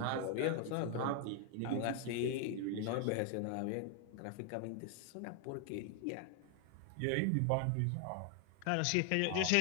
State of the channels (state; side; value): different; both; correlation 0.00